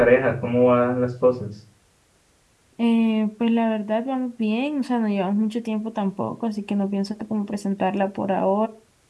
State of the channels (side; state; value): both; identical; correlation 1.00